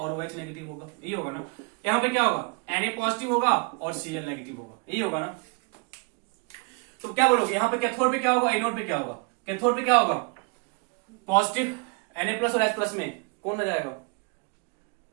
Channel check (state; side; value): quieter; left; 32.6 dB